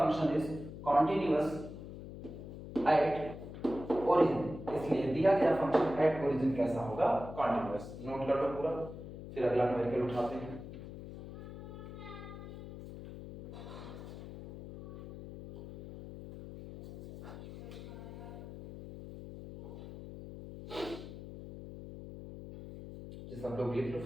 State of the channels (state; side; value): noise; left; hum, 11 dB below the sound